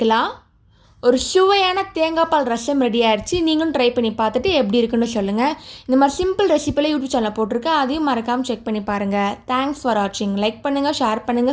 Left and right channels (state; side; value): identical; both; correlation 1.00